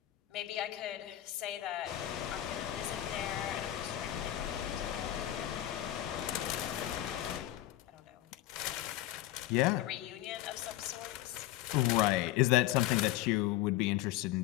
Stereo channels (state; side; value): quieter; right; 14.2 dB